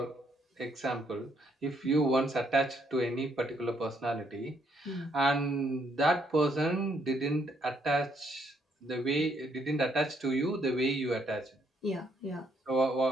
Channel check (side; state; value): both; normal; correlation 0.71